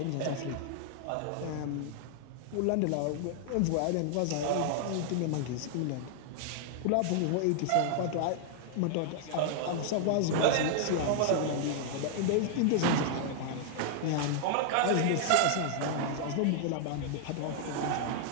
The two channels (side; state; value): both; different; correlation -0.01